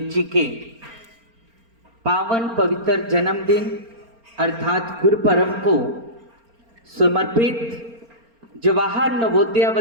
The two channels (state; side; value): late; left; 4.3 ms